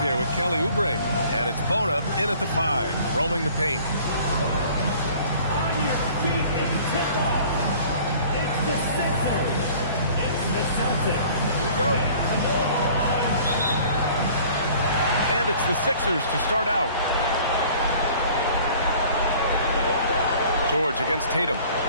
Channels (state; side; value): inverted; both; correlation -0.50